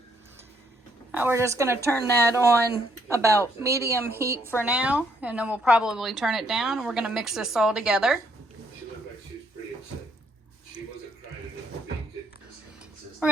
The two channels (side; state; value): both; normal; correlation 0.69